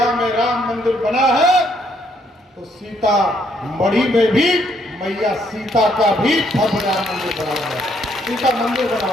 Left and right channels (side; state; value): both; normal; correlation 0.70